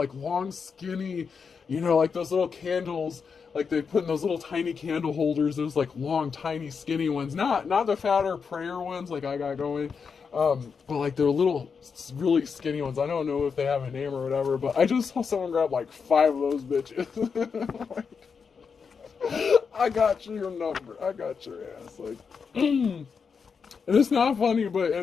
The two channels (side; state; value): right; quieter; 5.8 dB